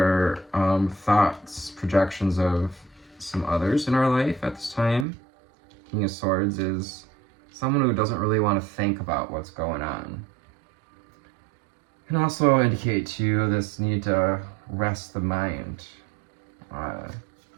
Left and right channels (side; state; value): left; drops out; at 5.1 s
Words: thoughts, projections of some others in our life at this time. King of Swords is someone who doesn't really want to think about what's going on. Can also indicate to you this need to rest the mind.